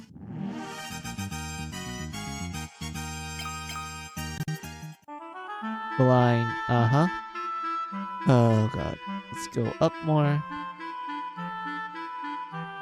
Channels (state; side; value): identical; both; correlation 1.00